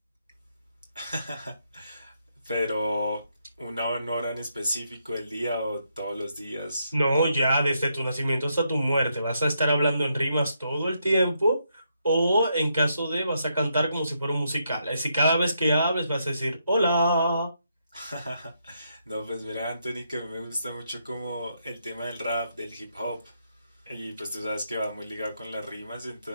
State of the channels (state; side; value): inverted; both; correlation -0.79